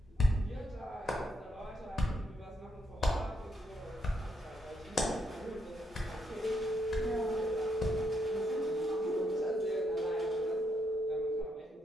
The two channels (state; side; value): normal; both; correlation 0.78